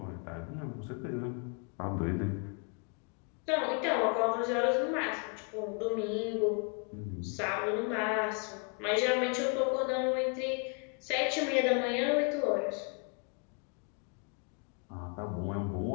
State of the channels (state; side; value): quieter; right; 37.1 dB